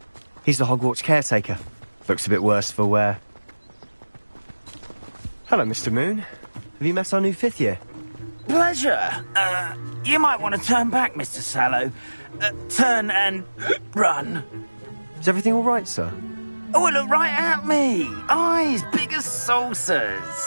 He's the Hogwarts caretaker. Looks a bit worse for wear. Hello, Mr. Moon. Have you met our new 5th year? Pleasure. You might want to turn back, Mr. Sallow. Turn and run. Is everything all right, sir? Oh, look right at me. Eyes big as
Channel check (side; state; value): both; inverted; correlation -1.00